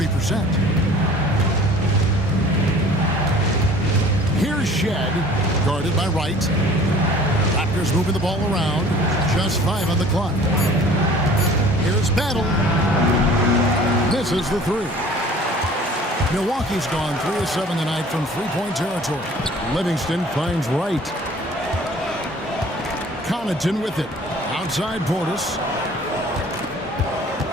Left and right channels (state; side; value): normal; both; correlation 0.48